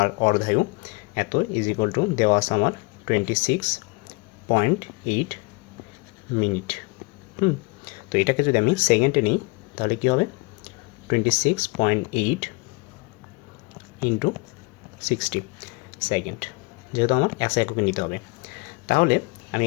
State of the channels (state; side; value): quieter; right; 26.7 dB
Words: অর্ধায়ু, এত ইজ ইকুয়াল টু দেওয়া আছে আমার 26.8 মিনিট। তো এটাকে যদি আমি সেকেন্ডে নিই তাহলে কি হবে, 26.8 ইন্টু 60 সেকেন্ড, যেহেতু আমার এসআই এককে নিতে হবে। তাহলে আমি